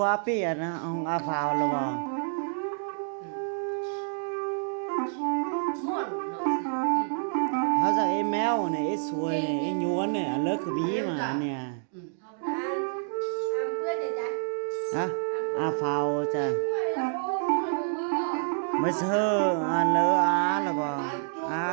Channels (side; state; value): left; silent; digital silence